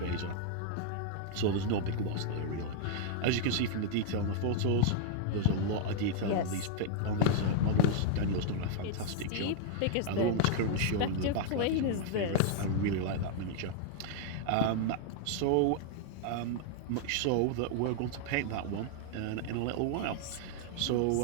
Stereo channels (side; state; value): both; different; correlation 0.00